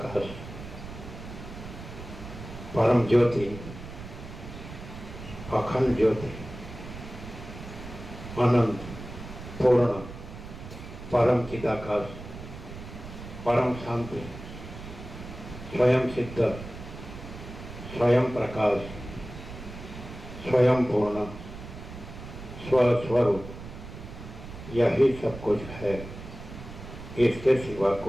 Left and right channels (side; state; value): right; noise; rumble, 12 dB below the sound